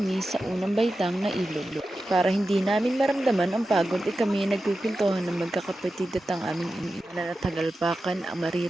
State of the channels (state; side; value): normal; both; correlation 0.92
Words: sa unang baitang na ilog. Para hindi namin maramdaman ang pagod ay kami nagpipintuhan ng magkakapatid at ang aming ina na tagalpakan ang